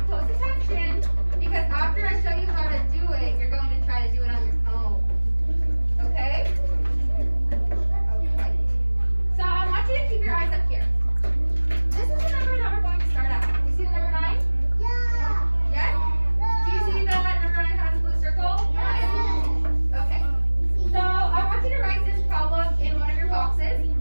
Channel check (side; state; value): both; inverted; correlation -1.00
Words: close attention because after I show you how to do it, you're going to try to do it on your own. Okay? Okay. So I want you to keep your eyes up here. This is the number that we're going to start at. Do you see the number 9? Yes? Do you see that number 9 has a blue circle? Okay. So I want you to write this problem in one of your boxes.